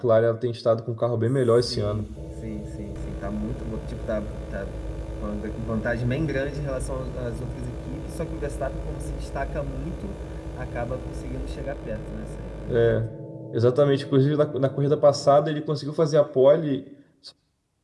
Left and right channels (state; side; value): identical; both; correlation 1.00